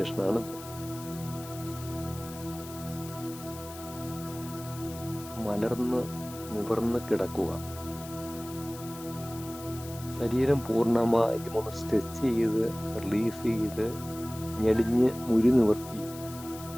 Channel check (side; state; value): left; noise; hiss, 15 dB below the sound